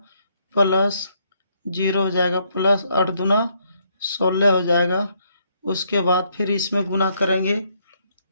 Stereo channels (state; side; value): inverted; both; correlation -0.72